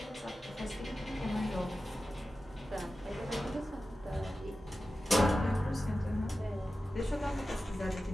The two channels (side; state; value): both; normal; correlation 0.93